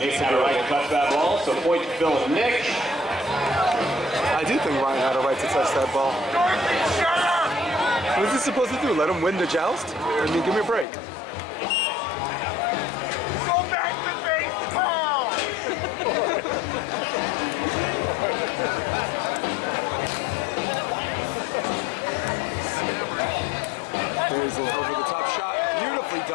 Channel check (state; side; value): drops out; right; at 10.9 s